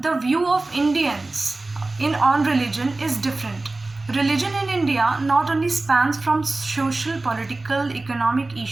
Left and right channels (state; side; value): quieter; left; 3.1 dB